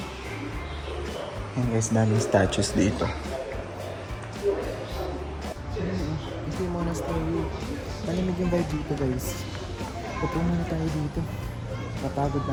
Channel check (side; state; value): both; identical; correlation 1.00